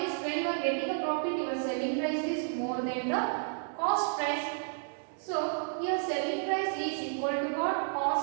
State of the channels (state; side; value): silent; left; digital silence